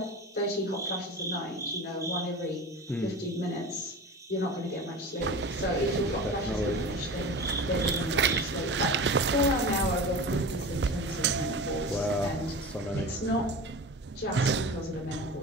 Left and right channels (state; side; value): normal; both; correlation 0.32